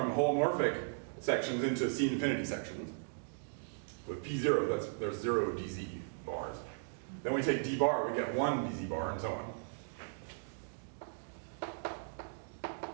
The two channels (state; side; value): silent; left; digital silence